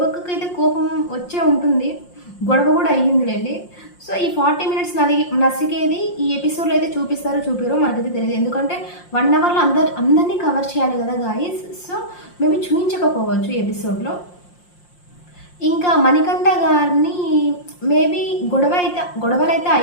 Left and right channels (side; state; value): right; late; 5.6 ms